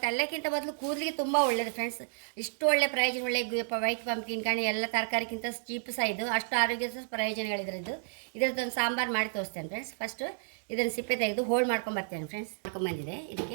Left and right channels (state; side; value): silent; left; digital silence